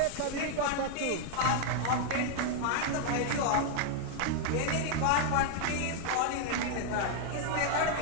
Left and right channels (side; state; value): both; different; correlation 0.00